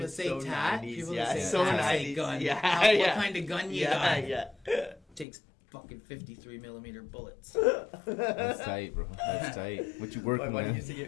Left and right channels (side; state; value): right; drops out; at 5.2 s